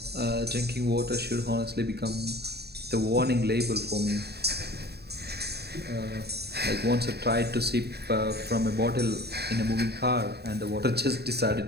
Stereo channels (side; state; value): left; late; 0.47 ms